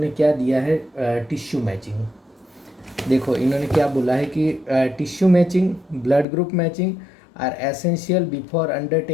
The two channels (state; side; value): drops out; right; at 6.2 s